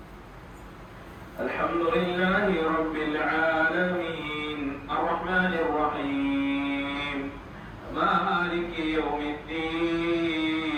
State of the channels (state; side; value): identical; both; correlation 1.00